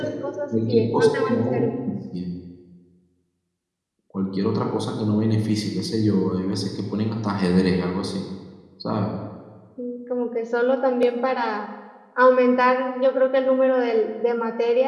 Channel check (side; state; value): both; identical; correlation 1.00